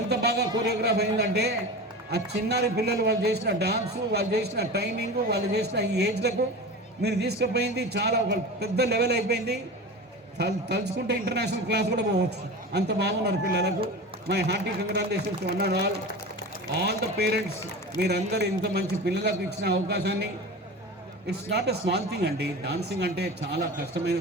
బాగా కోరియోగ్రాఫ్ అయిందంటే ఆ చిన్నారి పిల్లలు వాళ్ళు చేసిన డాన్సు, వాళ్ళు చేసిన టైమింగ్, వాళ్ళు చేసిన ఈ ఏజ్లకు మీరు తీసుకుపోయింది చాలా ఒక పెద్ద లెవెల్ అయిపోయింది. తలుచుకుంటే ఇంటర్నేషనల్ క్లాస్ కూడా పోవచ్చు, అంత బాగున్నారు పిల్లలకు. My hearty congratulations one and all the parents. మీరందరూ ఇంత మంచి పిల్లలకు ఇచ్చిన అవకాశాన్ని, it's not a small thing అండి. డాన్సింగ్ అంటే చాలా కష్టమైన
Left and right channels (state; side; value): normal; both; correlation 0.31